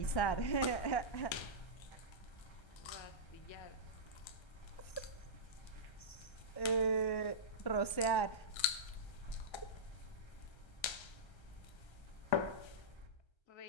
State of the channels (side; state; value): right; late; 1.3 ms